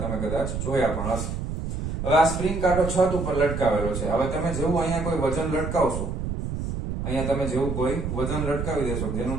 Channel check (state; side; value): noise; right; rumble, 4 dB below the sound